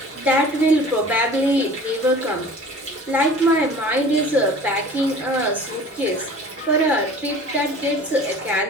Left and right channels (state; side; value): normal; both; correlation 0.44